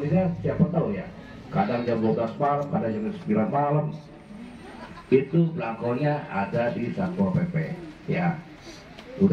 meninggal siapa tahu ya, kadang jam 12 malam, kadang jam 9 malam. Itu belangkonya ada di Satpol PP ya.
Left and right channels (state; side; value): identical; both; correlation 1.00